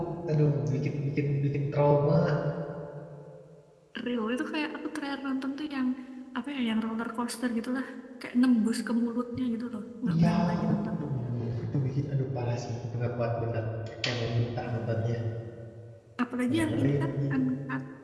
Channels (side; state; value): both; identical; correlation 1.00